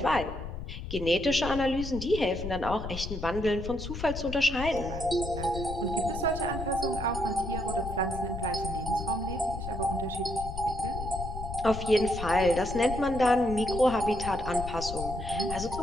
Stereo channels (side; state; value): left; noise; rumble, 7 dB below the sound